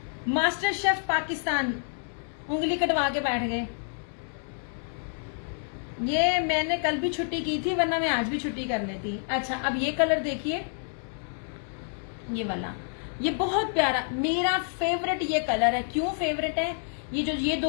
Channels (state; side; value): silent; right; digital silence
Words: मास्टर शेफ पाकिस्तान उंगली कटवा के बैठ गए। ये मैंने कल भी छुट्टी की थी, वरना मैं आज भी छुट्टी कर लेती। अच्छा, अब ये कलर देखिए, ये वाला, ये बहुत प्यारा, मेरा फेवरेट ये कलर है। क्यों फेवरेट है?